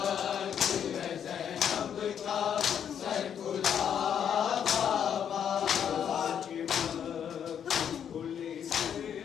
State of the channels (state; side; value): quieter; right; 8.6 dB